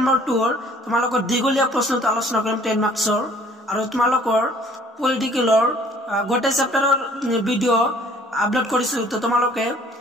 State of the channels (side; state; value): both; normal; correlation 0.56